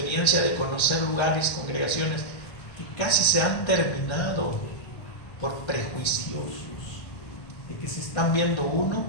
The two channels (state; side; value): late; right; 1.3 ms